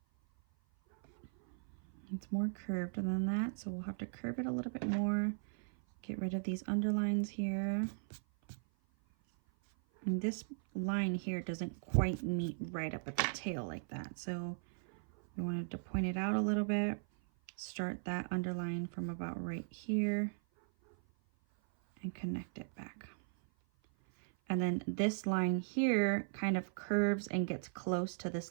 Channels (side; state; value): left; silent; 53 dB below the other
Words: It's more curved than that, so we'll have to curve it a little bit more. Get rid of these underlines here. And this line here doesn't quite meet right up at the tail like that. So we wanted to point it out a little bit. Start that underline from about right here and connect it back. And then this line here kind of curves and gets close to this